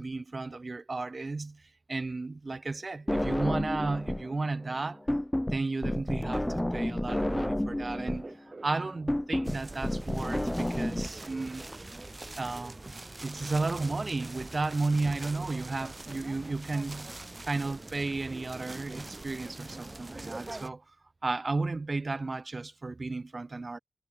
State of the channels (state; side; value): normal; both; correlation 0.98